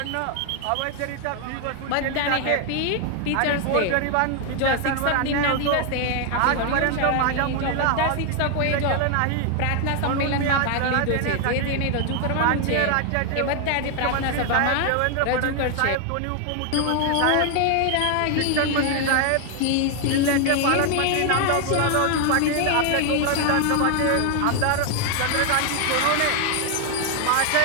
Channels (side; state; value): both; different; correlation 0.00